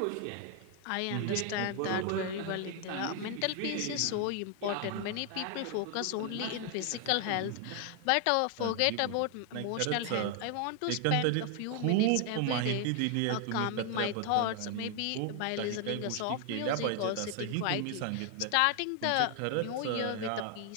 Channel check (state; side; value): different; both; correlation 0.00